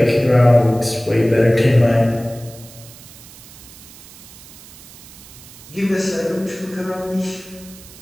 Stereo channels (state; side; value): noise; right; hiss, 19 dB below the sound